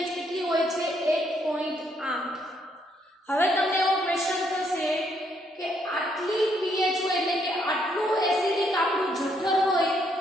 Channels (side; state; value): both; normal; correlation 0.73